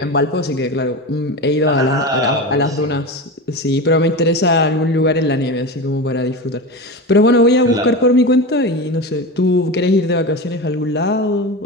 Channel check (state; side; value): normal; both; correlation 0.24